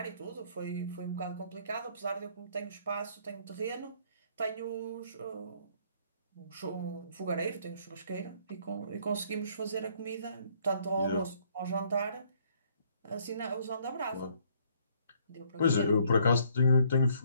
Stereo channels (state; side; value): inverted; both; correlation -0.65